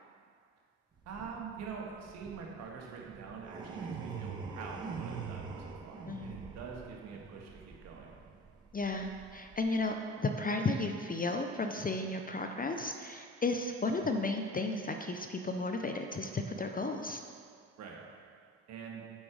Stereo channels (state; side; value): normal; both; correlation 0.42